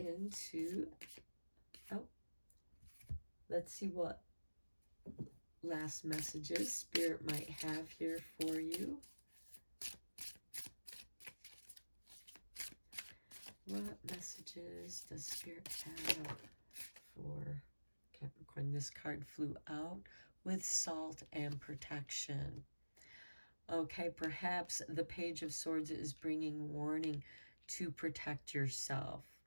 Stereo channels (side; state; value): both; inverted; correlation -1.00